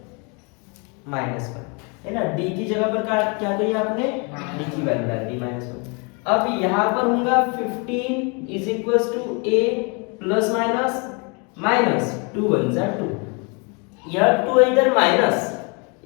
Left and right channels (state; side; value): quieter; right; 33.0 dB